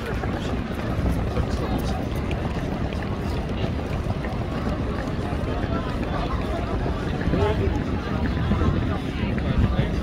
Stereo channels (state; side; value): identical; both; correlation 1.00